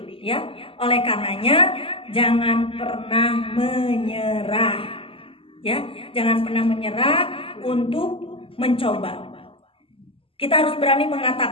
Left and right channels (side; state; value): right; late; 0.26 ms